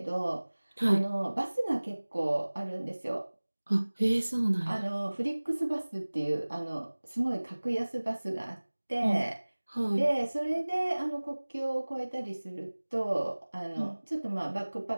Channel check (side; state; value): both; inverted; correlation -1.00